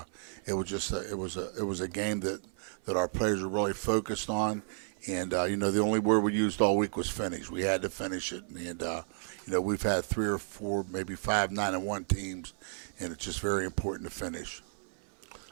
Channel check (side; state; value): left; silent; 56 dB below the other